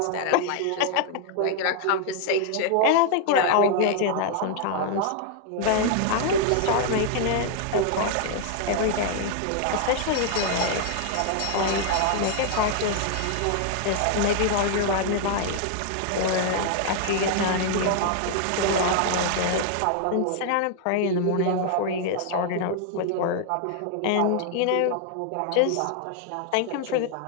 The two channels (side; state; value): both; different; correlation 0.00